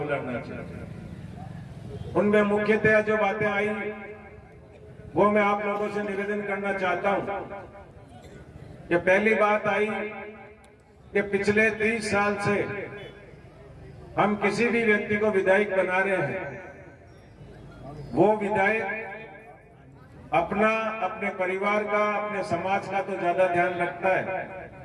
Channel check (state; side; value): identical; both; correlation 1.00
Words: लड़ना चाहिए। उनमें मुख्यतः जो बातें आई वो मैं आप लोगों से निवेदन करना चाहता हूं कि पहली बात आई कि पिछले 30 साल से हम किसी भी व्यक्ति को विधायक बना रहे हैं, वो विधायक अपने परिवार का, अपने समाज का तो ज्यादा ध्यान रखता है,